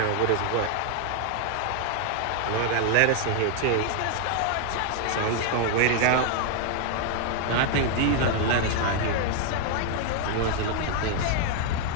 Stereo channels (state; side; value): different; both; correlation 0.00